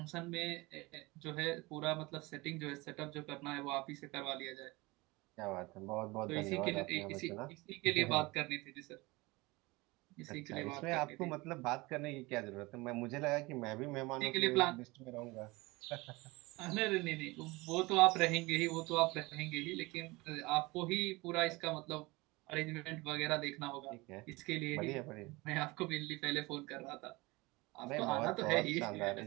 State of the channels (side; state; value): left; quieter; 22.9 dB